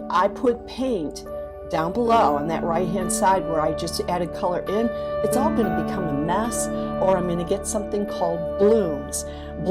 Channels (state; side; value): identical; both; correlation 1.00